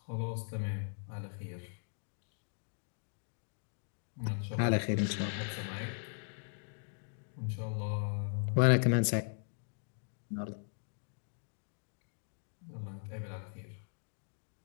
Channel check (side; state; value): right; silent; digital silence